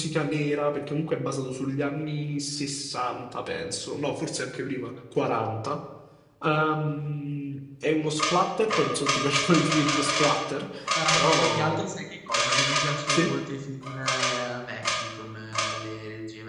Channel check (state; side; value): identical; both; correlation 1.00